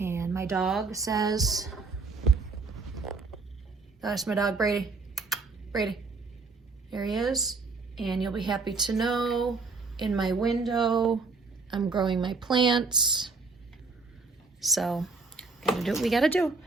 my dog says, that's my dog, Brady. Brady. There he is. And you'll be happy to know in my window, I'm growing my plants. So, gotta do what we gotta do.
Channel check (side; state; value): left; quieter; 4.1 dB